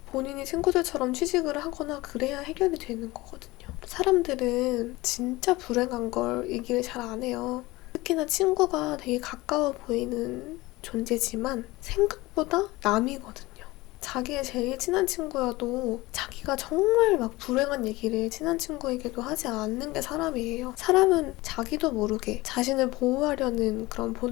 본인이 친구들처럼 취직을 하거나 그래야 해결이 되는 거거든요. 사람들은 진짜 불행한 걸 얘기를 잘 안 해요. 특히나 친구가 되게 가까워 보이는 존재지만 생각보다 남이거든요. 자기의 제일 친한 친구여도 자기가 정말 막 불행한 얘기를 친한 친구에게도 하지 않는 게 사람이에요. 사람은 자기도 모르게 자신을 보호하려는 그런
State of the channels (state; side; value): quieter; right; 20.5 dB